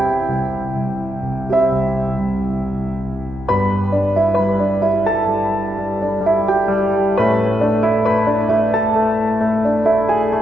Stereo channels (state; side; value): noise; right; hum, 19 dB below the sound